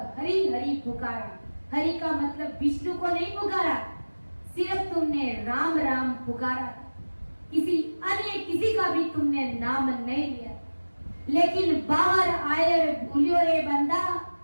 हरी हरी पुकारा। हरि का मतलब विष्णु को नहीं पुकारा, सिर्फ तुमने राम राम पुकारा, किसी अन्य किसी का भी तुमने नाम नहीं लिया। लेकिन बाहर आए भूलियो रे बंदा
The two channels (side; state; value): both; inverted; correlation -1.00